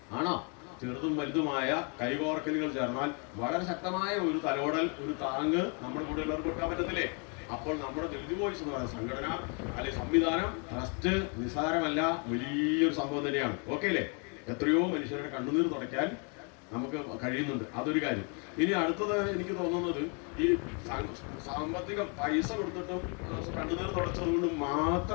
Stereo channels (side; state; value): right; quieter; 36.5 dB